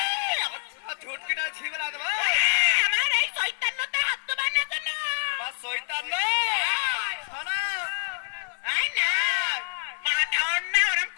আমার ঝুট কিনা ঝি বলা দেবো আমার এই শয়তানটা হাত তো বানা তো না তোমার শয়তান না শোনা আই না মা ঠাউন না ওরম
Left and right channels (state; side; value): silent; right; 60 dB below the other